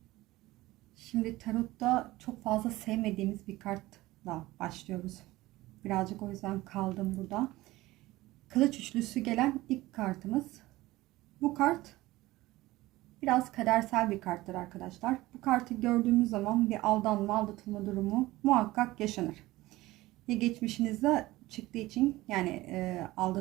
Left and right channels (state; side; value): quieter; left; 18.2 dB